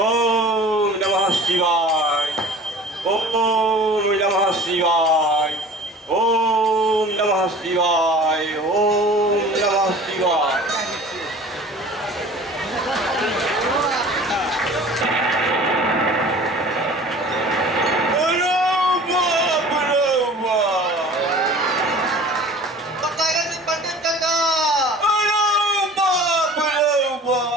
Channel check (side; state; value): both; normal; correlation 0.44